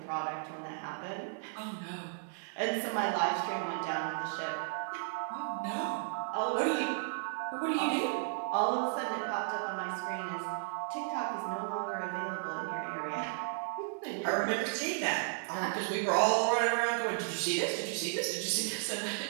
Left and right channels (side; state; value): left; silent; digital silence